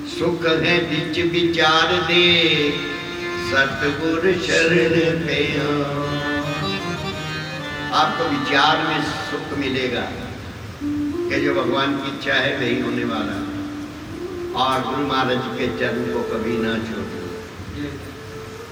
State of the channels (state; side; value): identical; both; correlation 1.00